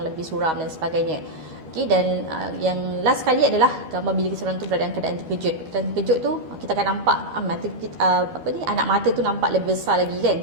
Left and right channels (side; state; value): left; late; 12 ms